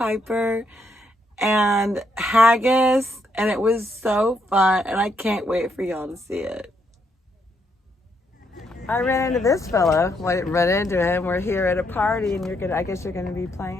and haggis, and it was so fun, and I can't wait for y'all to see it. I ran into this fellow. Well, I didn't run into him. We're here at a party, and I guess you're gonna be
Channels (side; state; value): both; normal; correlation 0.76